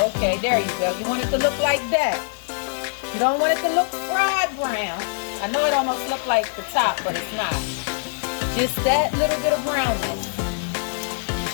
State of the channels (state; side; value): silent; right; 56 dB below the other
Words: Okay, there you go. You want it to look like that. You don't want it to look fried brown. I know it almost looks like the top, but it's not. Just that little bit of brownness.